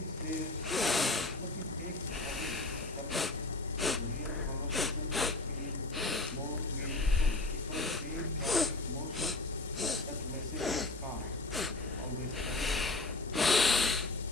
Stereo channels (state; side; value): quieter; right; 3.0 dB